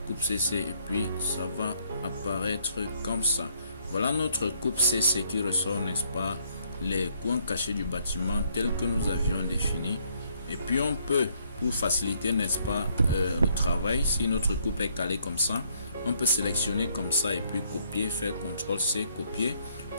coupe CC et puis ça va apparaître comme ça. Voilà notre coupe CC qui ressort, n'est-ce pas, les coins cachés du bâtiment tels que nous avions défini. Et puis on peut, pour faciliter, n'est-ce pas, le travail, si notre coupe est calée comme ça, on peut sélectionner comme ça et puis copier, faire CTRL-C, copier,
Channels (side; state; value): both; inverted; correlation -0.69